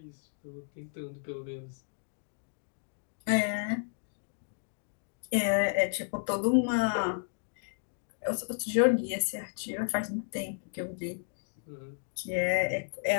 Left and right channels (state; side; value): silent; right; digital silence